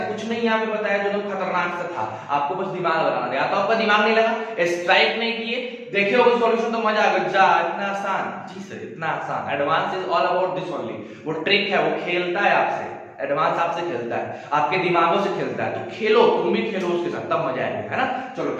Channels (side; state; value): both; identical; correlation 1.00